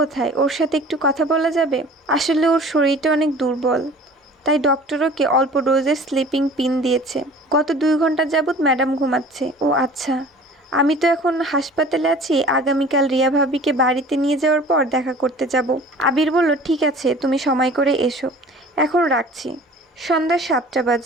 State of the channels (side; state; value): both; normal; correlation 0.46